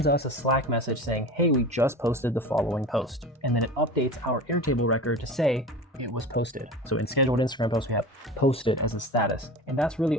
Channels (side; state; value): both; normal; correlation 0.33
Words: us a Slack message saying, hey, we just posted the following post. And then it updates our Airtable record to say it was posted. So in scheduled Instagram posts, we have posted as a status. And that's really